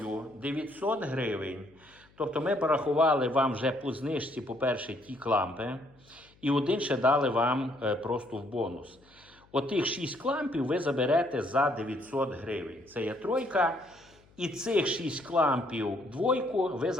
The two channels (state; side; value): noise; left; hum, 30 dB below the sound